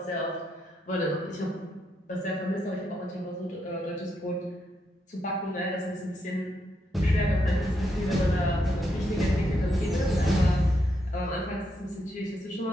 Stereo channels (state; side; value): normal; both; correlation 0.80